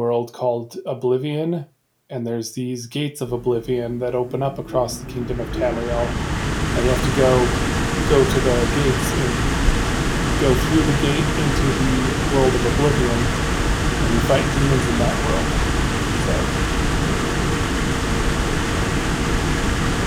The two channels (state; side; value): identical; both; correlation 1.00